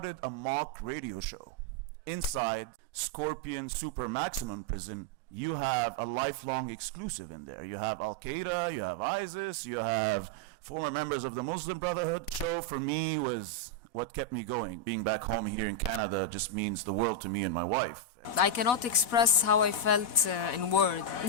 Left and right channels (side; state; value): right; late; 4.1 ms